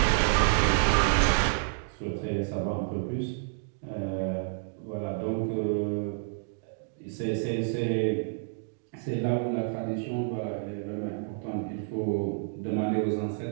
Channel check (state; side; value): silent; left; digital silence